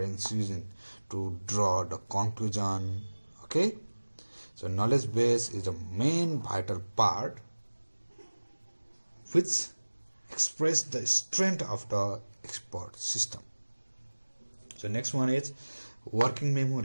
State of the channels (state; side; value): inverted; both; correlation -1.00